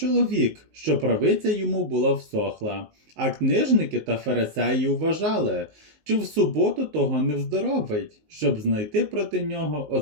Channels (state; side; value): late; left; 19 ms